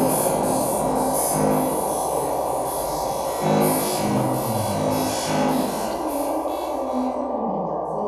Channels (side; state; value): both; identical; correlation 1.00